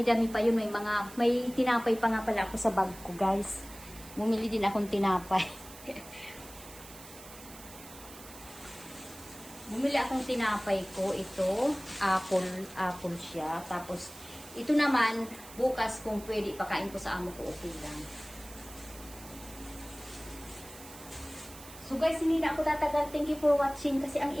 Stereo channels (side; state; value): right; noise; hiss, 17 dB below the sound